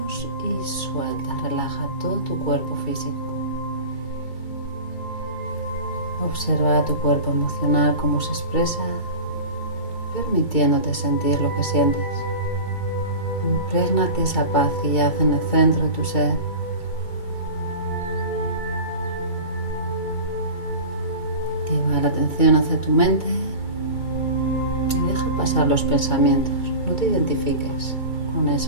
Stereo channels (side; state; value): right; late; 2.2 ms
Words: y suelta, relaja todo tu cuerpo físico. Observa tu cuerpo emocional, cómo se expresa, permitiéndote sentir lo que sientes. Imprégnate esa paz que yace en el centro de tu ser. Lleva la atención hacia tu mente y deja pasar los pensamientos. No te identifiques con